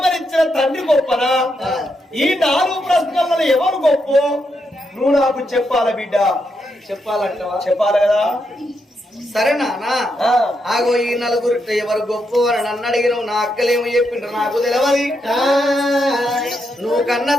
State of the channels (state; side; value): normal; both; correlation 0.81